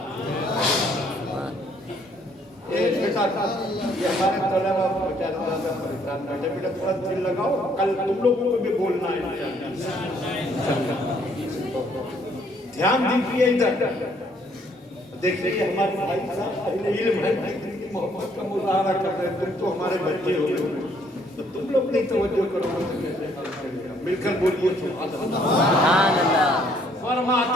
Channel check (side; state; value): both; normal; correlation 0.65